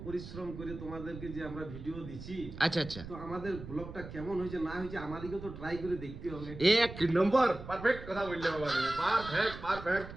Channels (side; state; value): right; noise; rumble, 12 dB below the sound